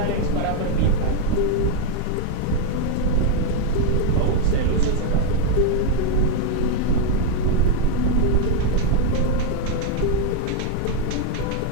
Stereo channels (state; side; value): different; both; correlation 0.01